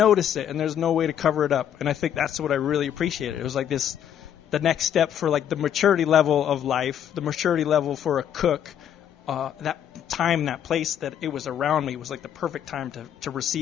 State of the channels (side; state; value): right; quieter; 9.6 dB